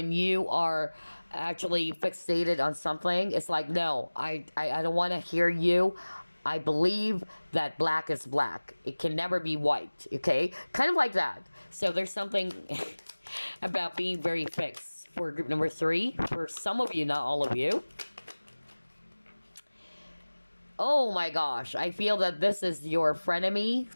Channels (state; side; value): inverted; both; correlation -1.00